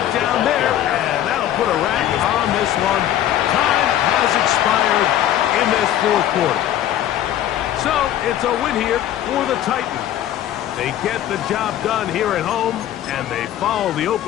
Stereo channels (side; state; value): right; quieter; 11.9 dB